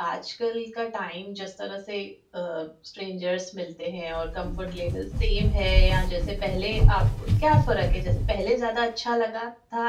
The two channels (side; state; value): both; identical; correlation 1.00